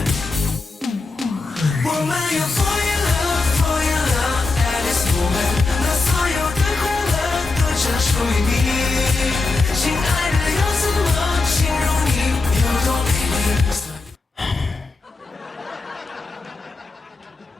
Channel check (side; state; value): right; quieter; 3.6 dB